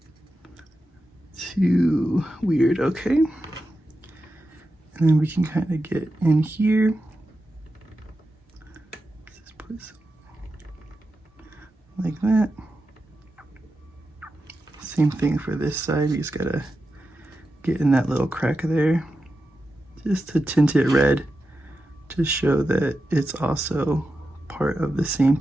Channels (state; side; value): normal; both; correlation 0.90